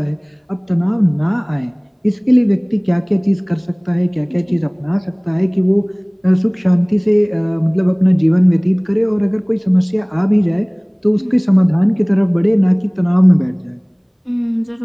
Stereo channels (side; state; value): both; identical; correlation 1.00